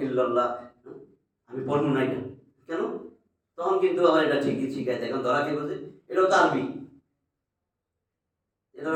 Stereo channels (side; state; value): both; identical; correlation 1.00